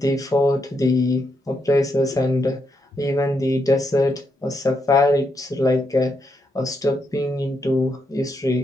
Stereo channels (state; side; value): normal; both; correlation 0.80